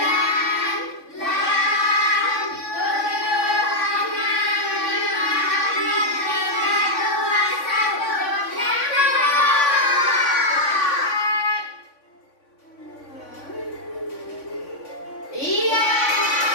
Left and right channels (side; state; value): right; late; 3.5 ms